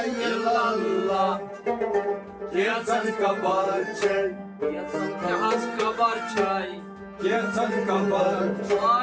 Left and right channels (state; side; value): identical; both; correlation 1.00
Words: illallah Gezan kabar çay Yahaz kabar çay Gezan kabar